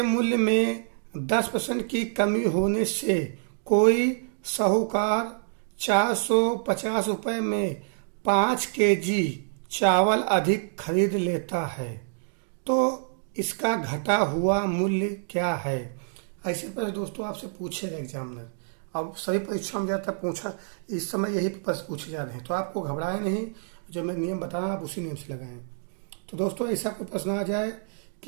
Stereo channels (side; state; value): left; silent; digital silence